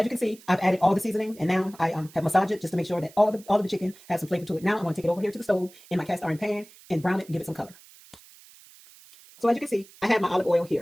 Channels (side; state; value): right; noise; hiss, 23 dB below the sound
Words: you can see, I've added all the seasoning, and now I have massaged it just to make sure that all of the chicken has some flavor to it. Now I'm going to take it over here to the stove in my cast iron pan and brown it and give it some color. So as you can see, I have my olive oil